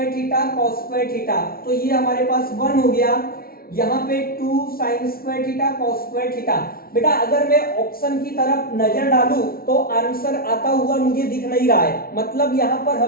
theta cos square theta. तो ये हमारे पास 1 हो गया, यहाँ पे 2 sign square theta cos square theta. बेटा अगर मैं ऑप्शन की तरफ नजर डालूं तो आंसर आता हुआ मुझे दिख नहीं रहा है, मतलब यहाँ पर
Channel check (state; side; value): late; right; 0.43 ms